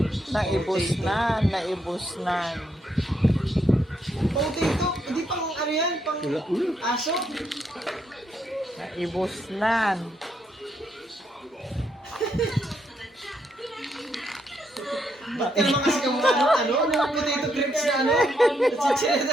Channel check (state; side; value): normal; both; correlation 0.76